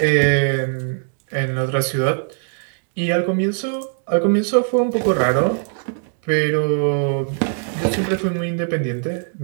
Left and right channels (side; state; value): left; silent; digital silence